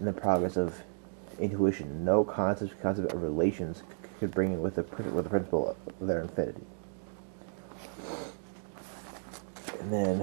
the progress of intuition, no concept of relations could bring in with the principle of their infinity. And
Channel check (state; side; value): silent; left; digital silence